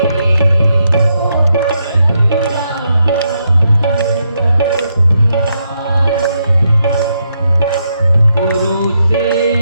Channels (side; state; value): both; inverted; correlation -0.80